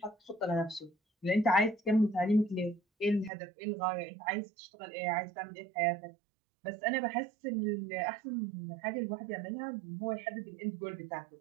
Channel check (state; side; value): drops out; left; at 3.3 s